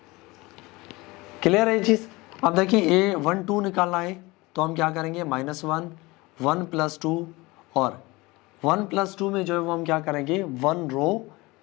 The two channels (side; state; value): right; quieter; 22.6 dB